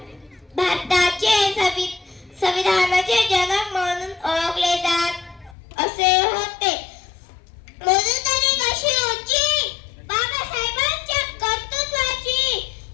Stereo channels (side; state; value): right; drops out; at 5.6 s